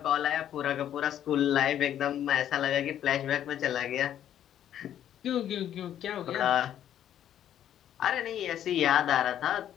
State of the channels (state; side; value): quieter; right; 10.7 dB